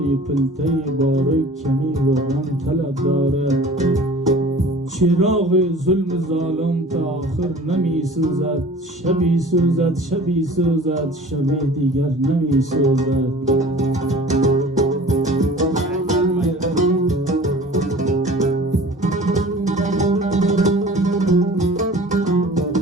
پلته باره کمی روغن طلب دارد چراغ ظلم ظالم تا آخر نمی سوزد شبی سوزد شبی سوزد شبی دیگر نمی سوزد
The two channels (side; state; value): both; normal; correlation 0.44